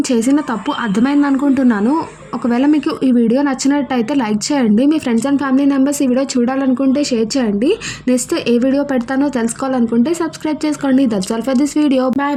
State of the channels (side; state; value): both; identical; correlation 1.00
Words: చేసిన తప్పు అర్థమైంది అనుకుంటున్నాను. ఒకవేళ మీకు ఈ వీడియో నచ్చినట్టయితే లైక్ చేయండి. మీ ఫ్రెండ్స్ అండ్ ఫ్యామిలీ మెంబర్స్ ఈ వీడియో చూడాలనుకుంటే షేర్ చేయండి. నెక్స్ట్ ఏ వీడియో పెడతానో తెలుసుకోవాలనుకుంటే సబ్స్క్రైబ్ చేసుకోండి. That's all for this video.